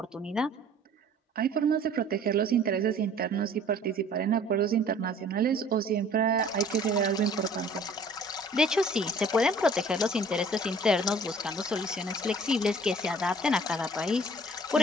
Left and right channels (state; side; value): normal; both; correlation 0.51